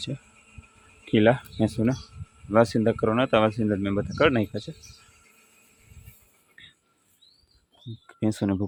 છે ખીલા ભેંસોને, વાસિંદા કરવાના હતા, વાસિંદા મેં બધા કરી નાખ્યા છે। ભેંસોને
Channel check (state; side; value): identical; both; correlation 1.00